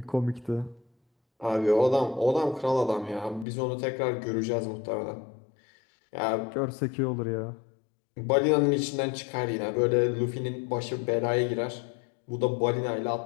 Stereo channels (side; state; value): right; drops out; at 3.5 s